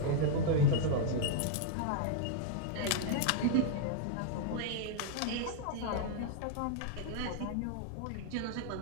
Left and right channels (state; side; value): different; both; correlation -0.01